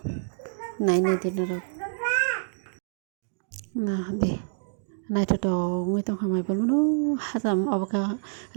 naine dinarok na be naitoto ngoi tongkha mai bolmano hajam oboka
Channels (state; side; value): silent; left; 60 dB below the other